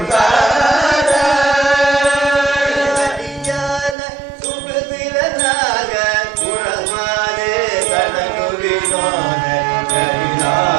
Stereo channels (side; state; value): left; drops out; at 4.0 s